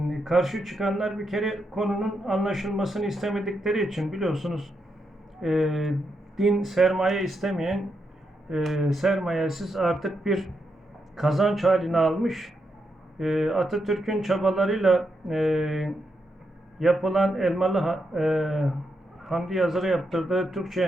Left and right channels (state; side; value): normal; both; correlation 0.83